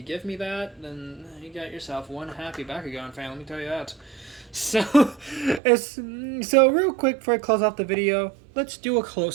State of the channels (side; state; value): left; drops out; at 5.6 s